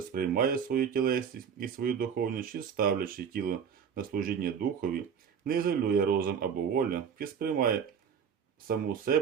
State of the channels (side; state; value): left; quieter; 7.3 dB